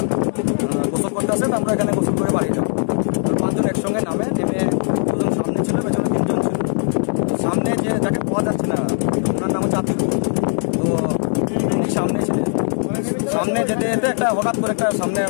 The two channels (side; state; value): right; silent; 65 dB below the other